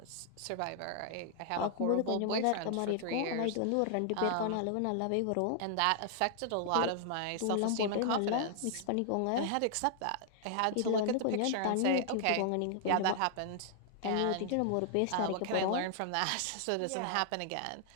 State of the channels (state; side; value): different; both; correlation -0.01